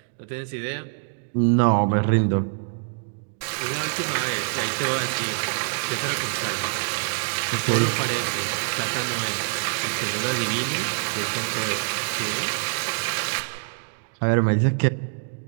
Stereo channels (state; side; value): silent; left; digital silence